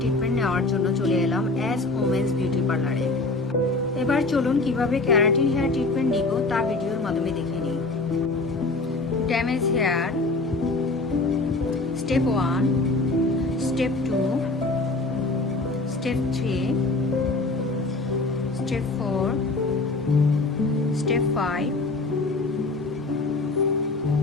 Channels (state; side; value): quieter; right; 3.3 dB